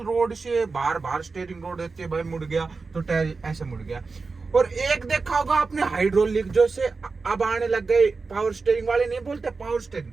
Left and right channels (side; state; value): left; quieter; 4.2 dB